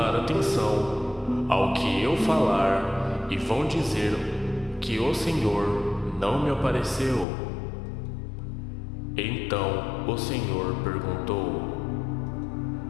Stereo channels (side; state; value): right; drops out; at 7.2 s